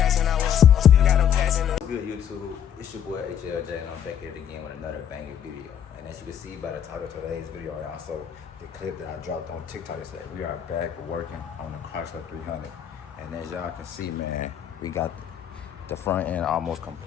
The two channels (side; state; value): right; quieter; 9.2 dB